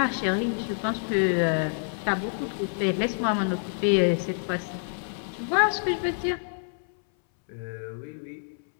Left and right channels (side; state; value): right; silent; 60 dB below the other